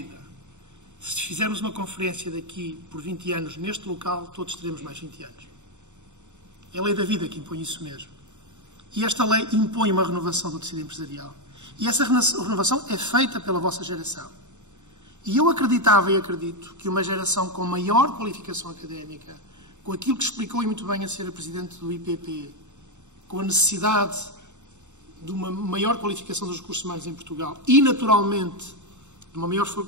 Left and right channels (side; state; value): left; late; 0.84 ms